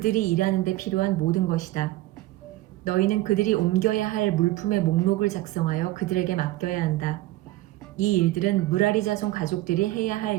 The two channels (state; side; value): quieter; left; 16.8 dB